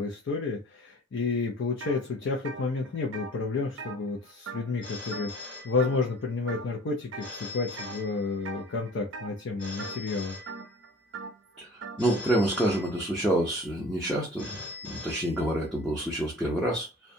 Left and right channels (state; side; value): normal; both; correlation 0.45